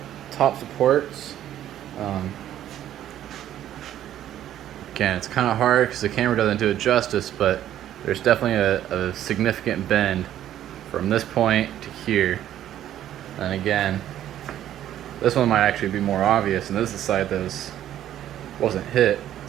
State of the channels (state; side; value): quieter; left; 11.7 dB